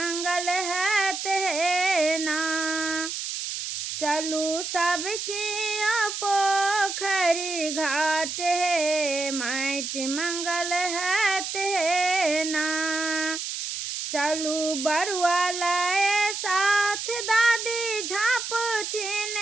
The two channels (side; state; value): right; noise; hiss, 5 dB below the sound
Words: हैत हे ना। चलू सब किया पोखरी घाट हे, माटि मंगल हैत हे ना। चलू बरुआ लाए साथ, दादी झाँपथिन